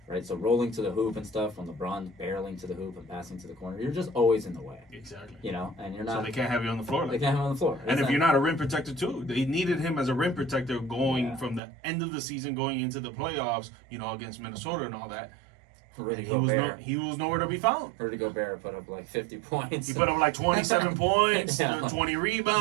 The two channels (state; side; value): drops out; left; at 11.6 s